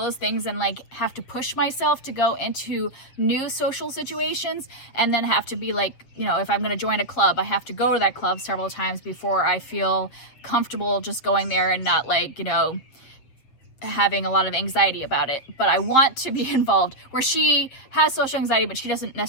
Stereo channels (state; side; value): late; right; 7.9 ms